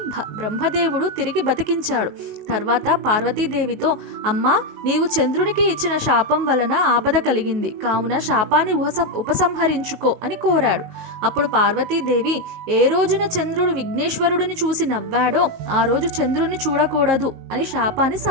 బ్రహ్మదేవుడు తిరిగి బతికించాడు. తర్వాత పార్వతీదేవితో, అమ్మా, నీవు చంద్రునికి ఇచ్చిన శాపం వలన ఆపద కలిగింది, కావున శాపాన్ని ఉపసంహరించుకో అని కోరాడు. అప్పుడు పార్వతీదేవి, ఏ రోజున చంద్రుడు విఘ్నేశ్వరుడిని చూసి నవ్వాడో ఆ రోజు చంద్రుడిని చూడకూడదు అని శాపాన్ని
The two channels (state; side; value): late; left; 19 ms